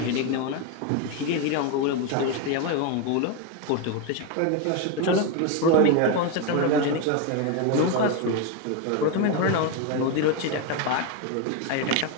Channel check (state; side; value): different; both; correlation 0.02